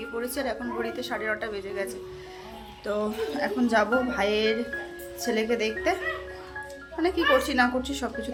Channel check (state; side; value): identical; both; correlation 1.00